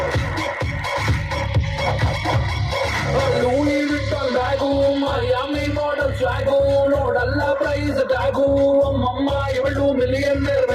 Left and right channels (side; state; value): both; identical; correlation 1.00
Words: Louis Vuitton bag Miami model swag ನೋಡಲ್ಲ ಪ್ರೈಸ್ ಟ್ಯಾಗು ಅಮ್ಮಮ್ಮ ಇವಳು ಮಿಲಿಯನ್ನೇರ್